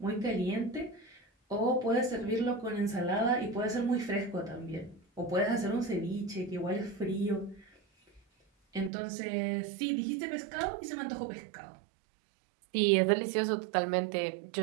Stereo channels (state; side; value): drops out; left; at 8.9 s